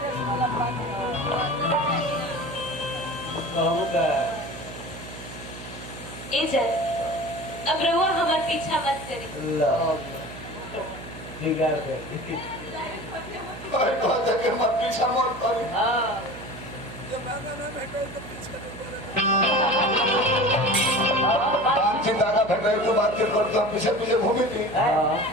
अब रहुआ हमार पीछा मत करी। भाई बात है कि मत पीछा मत करी। बातचीत आगा भेट रही तो बातचीत करते हम पीछे पीछे घूमी थी।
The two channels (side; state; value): right; noise; hum, 14 dB below the sound